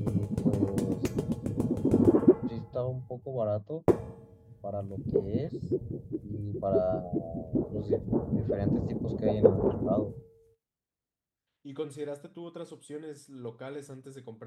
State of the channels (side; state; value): both; identical; correlation 1.00